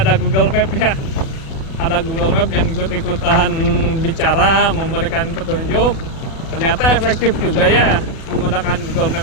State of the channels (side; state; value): right; late; 37 ms